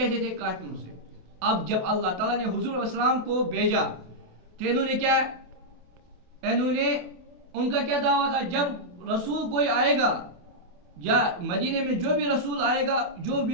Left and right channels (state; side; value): late; left; 28 ms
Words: تھے؟ کافروں سے. اب جب اللہ تعالیٰ نے حضور علیہ السلام کو بھیجا تو انہوں نے کیا, انہوں نے ان کا کیا دعویٰ تھا, جب رسول کوئی آئے گا یا مدینے میں جو بھی رسول آئے گا, جو